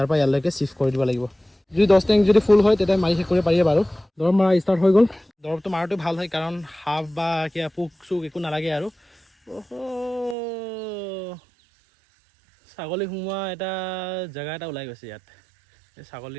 পৰা ইয়ালৈকে চিফ্ট কৰি দিব লাগিব। যদি 10 টেংক যদি ফুল হয়, তেতিয়া মাৰি শেষ কৰিব পাৰিব। বাৰু দৰৱ মাৰা ষ্টাৰ্ট হৈ গ'ল। দৰৱটো মাৰাটো ভাল হয়, কাৰণ সাপ বা কিবা পোক চোক একো নালাগে। আৰু ছাগলী সোমোৱা এটা জেগা এটা ওলাই গৈছে ইয়াত। এই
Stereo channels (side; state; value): left; drops out; at 10.4 s